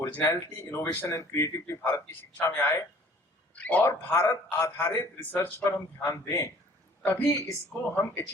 innovation and creativity Bharat की शिक्षा में आए और भारत आधारित रिसर्च पर हम ध्यान दें, तभी इसको हम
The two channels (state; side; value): normal; both; correlation 0.53